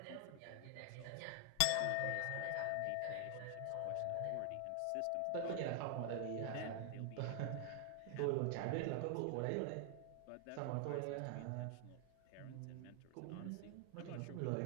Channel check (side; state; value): both; different; correlation 0.00